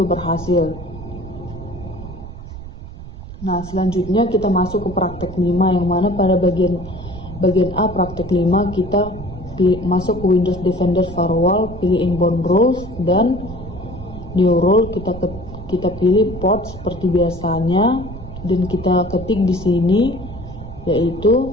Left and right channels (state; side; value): noise; right; rumble, 13 dB below the sound